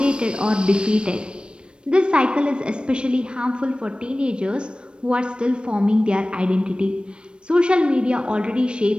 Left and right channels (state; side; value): late; left; 0.056 ms